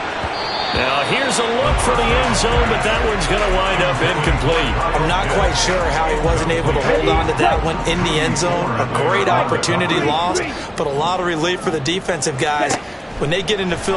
Now here's a look for the end zone, but that one's going to wind up incomplete. I'm not quite sure how he wasn't able to hold on to that one in the end zone. A great opportunity lost, but a lot of relief for the defensive guys. When they get into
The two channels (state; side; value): identical; both; correlation 1.00